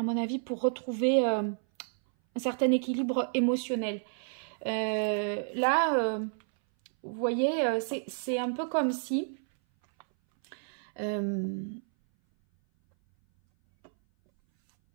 avis, pour retrouver un certain équilibre émotionnel. Là, vous voyez, c'est un peu comme si...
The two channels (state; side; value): silent; left; 58 dB below the other